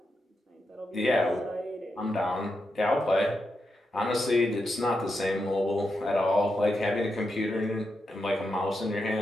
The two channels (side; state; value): both; normal; correlation 0.86